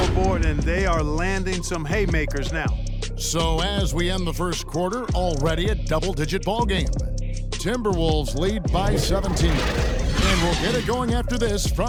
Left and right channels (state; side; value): identical; both; correlation 1.00